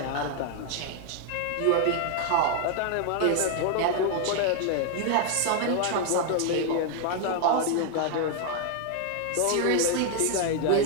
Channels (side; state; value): both; different; correlation 0.00